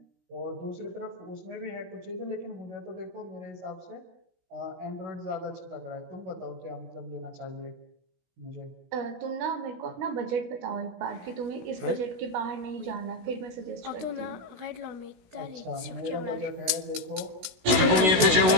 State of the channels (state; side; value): late; left; 16 ms